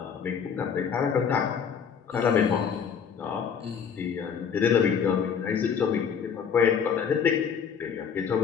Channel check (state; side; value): quieter; right; 7.0 dB